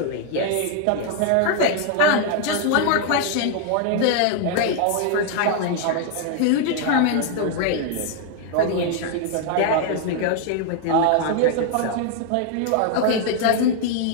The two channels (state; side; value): different; both; correlation 0.00